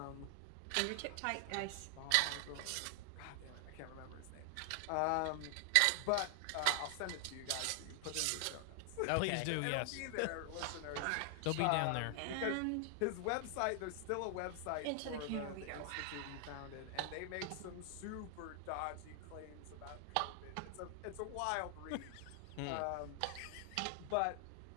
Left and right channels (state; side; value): different; both; correlation 0.00